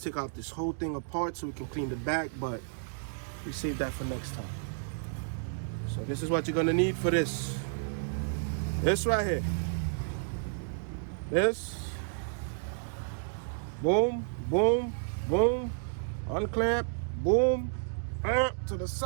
take out this whole thing apart so we can clean the back, but we save that for next time. So this is what you're gonna need for this. This right here. This. Boom, boom, boom. Unclamp, boom. To the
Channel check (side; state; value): left; silent; digital silence